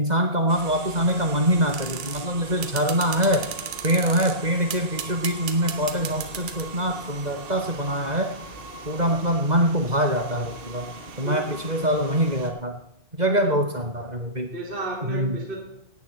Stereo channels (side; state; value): left; late; 2.3 ms